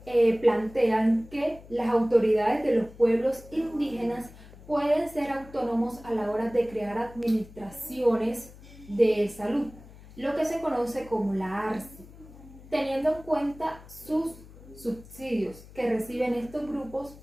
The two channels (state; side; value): noise; left; hum, 20 dB below the sound